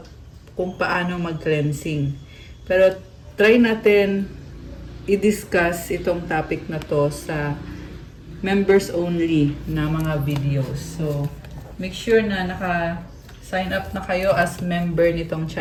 kung paano mag-cleansing. Pero try natin i-discuss itong topic na to sa members only na mga videos. So, make sure na naka-sign up na kayo as member nitong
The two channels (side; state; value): both; identical; correlation 1.00